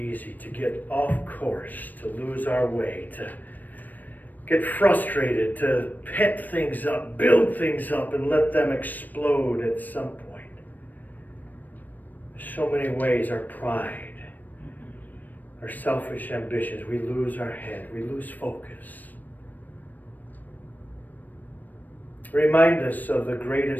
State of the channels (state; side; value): late; right; 0.086 ms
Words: to get off course, to lose our way, to get frustrated, to pent things up, build things up, and let them explode at some point. So many ways our pride, our selfish ambitions, we lose our head, we lose focus. Remind us of the